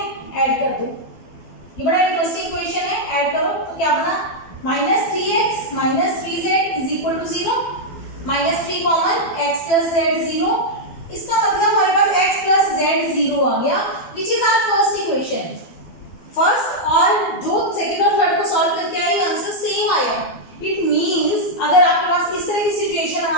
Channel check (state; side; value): late; right; 12 ms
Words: ऐड कर दो। ये बड़ा इंटरेस्टिंग इक्वेशन है, ऐड करो तो क्या बना, -3x - 3z = 0, -3 common x + z 0। इसका मतलब हमारे पास x + z 0 आ गया, which is our first equation. First और जो सेकंड और थर्ड को सॉल्व करके आई, आंसर सेम आया। इट मींस अगर आपके पास इस तरह की सिचुएशन